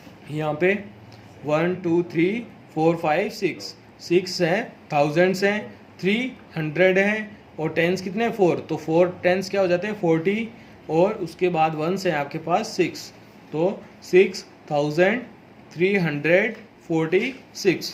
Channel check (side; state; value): both; identical; correlation 1.00